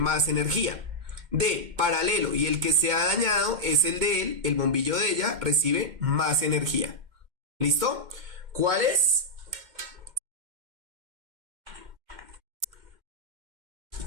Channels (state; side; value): late; left; 2.1 ms